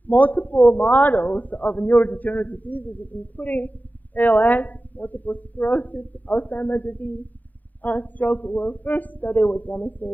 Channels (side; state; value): right; late; 0.083 ms